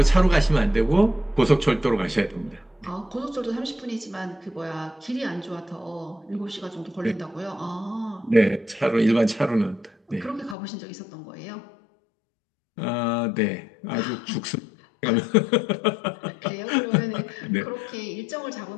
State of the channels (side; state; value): right; drops out; at 10.6 s